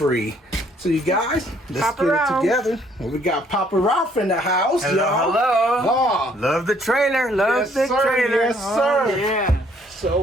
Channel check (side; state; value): both; normal; correlation 0.64